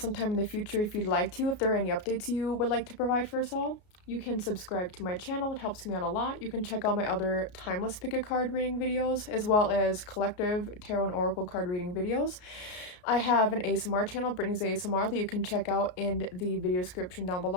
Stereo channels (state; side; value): late; right; 33 ms